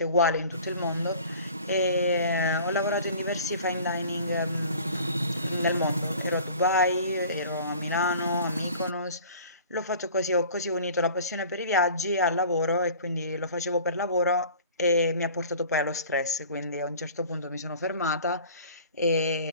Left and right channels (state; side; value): inverted; both; correlation -0.45